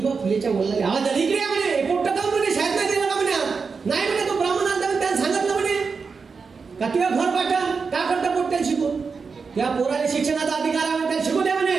फुलेच्या वडिलांनी आवाज आला, इकडे म्हणे, पोट्ट का म्हणे, शाळेत नाही गेला का म्हणे, नाही म्हणे, तो ब्राह्मण आला त्याने सांगितलं म्हणे का तुझ्या घर पाठव, का करता पोट्ट्याला शिकून, त्या पोराला शिक्षणाचा अधिकार आहे, त्याला शिकू द्या म्हणे,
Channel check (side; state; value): left; quieter; 5.1 dB